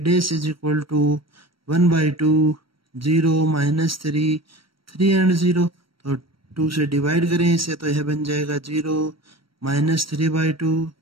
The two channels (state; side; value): late; left; 0.74 ms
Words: dash is equal to 1/2 0 -3 3 and 0। तो 2 से डिवाइड करें इसे तो यह बन जाएगा 0 -3/2